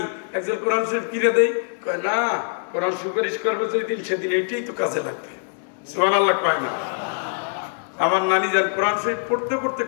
একজন কোরআন শরীফ কিনে দেয়? কয় না, কোরআন সুপারিশ করবে যেদিন সেদিন এইটাই তো কাজে লাগবে। সুবহানাল্লাহ কয় না? আমার নানি যান কোরআন শরীফ পড়তে পড়তে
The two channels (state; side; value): silent; right; digital silence